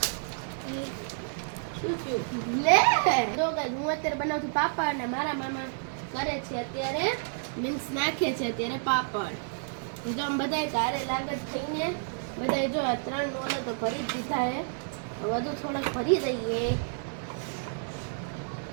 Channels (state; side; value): silent; left; 58 dB below the other